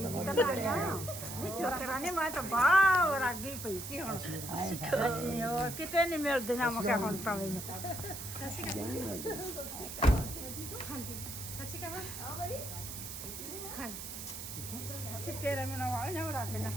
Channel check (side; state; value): right; noise; hiss, 8 dB below the sound